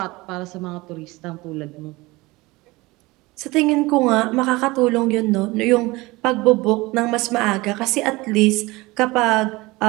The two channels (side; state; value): left; quieter; 21.9 dB